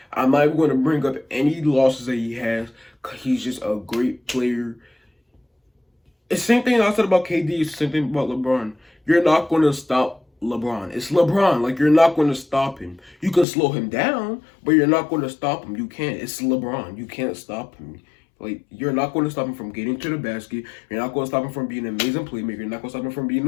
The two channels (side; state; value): right; drops out; at 13.5 s